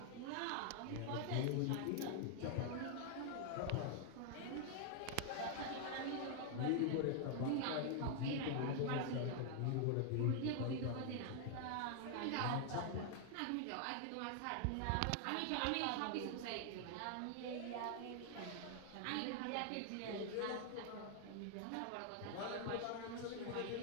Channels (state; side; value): different; both; correlation 0.00